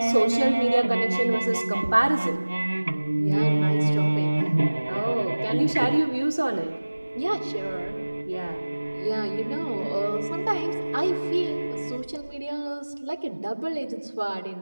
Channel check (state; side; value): inverted; both; correlation -1.00